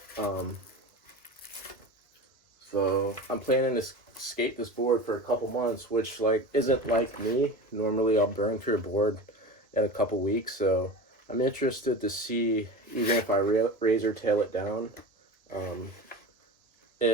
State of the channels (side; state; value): both; normal; correlation 0.30